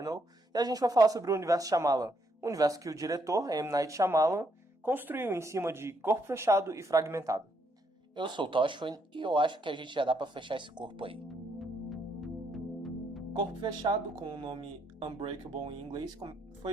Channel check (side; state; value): both; normal; correlation 0.74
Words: e a gente vai falar sobre o universo Shyamalan, um universo que o diretor, M. Night Shyamalan, construiu em cima de Corpo Fechado e Fragmentado. Eu sou o Toshwin e eu acho que a gente já dá pra fechar esse corpo aí. Corpo Fechado, com o nome Unbreakable em inglês,